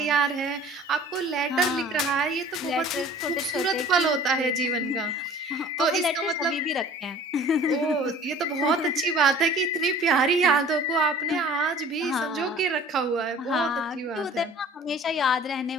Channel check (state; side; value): normal; both; correlation 0.48